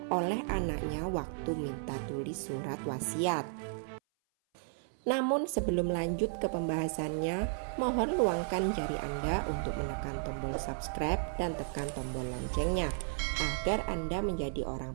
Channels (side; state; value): left; silent; 55 dB below the other